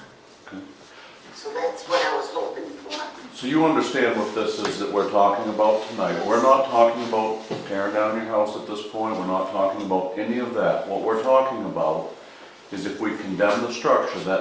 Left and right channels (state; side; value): identical; both; correlation 1.00